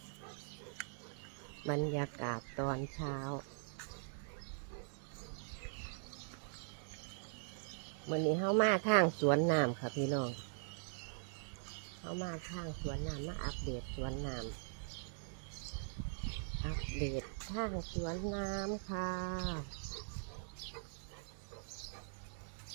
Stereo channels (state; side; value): silent; left; digital silence